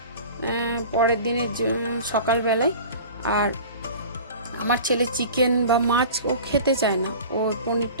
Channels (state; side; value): inverted; both; correlation -0.39